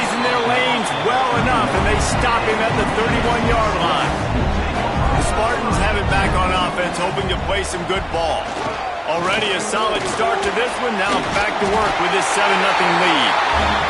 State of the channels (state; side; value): identical; both; correlation 1.00